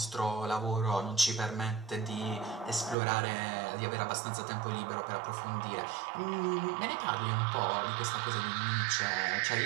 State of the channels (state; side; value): drops out; left; at 3.0 s